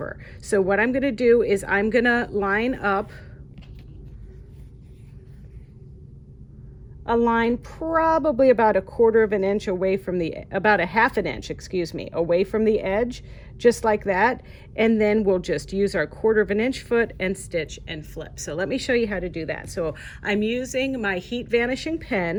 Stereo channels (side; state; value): both; identical; correlation 1.00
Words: So what I'm going to do is I'm going to line up a line probably about a quarter of an inch away from the, about a half an inch, excuse me, away from the edge, just like that. And then we'll just use our quarter of an inch foot and stitch and flip. So let me show you how to do that. So I'm using my heat vanishing